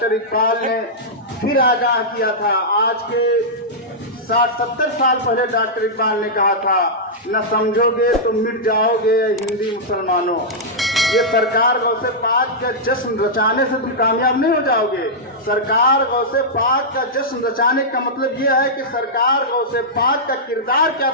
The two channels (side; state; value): both; normal; correlation -0.10